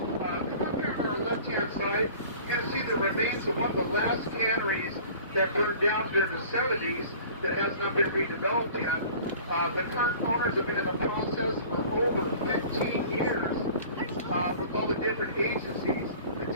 up here on our left-hand side, you're going to see the remains of one of the last canneries that burned down during the 70s that has not been redeveloped yet. The current owners have been in the process for over 15 years with all the different agencies it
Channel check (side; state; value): both; inverted; correlation -0.46